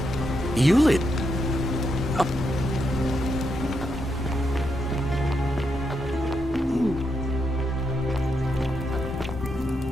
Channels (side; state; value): both; normal; correlation 0.82